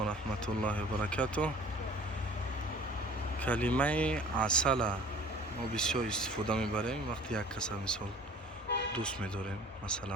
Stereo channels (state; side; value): normal; both; correlation 0.48